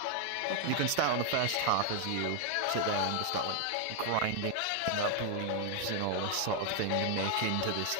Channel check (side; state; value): both; different; correlation 0.00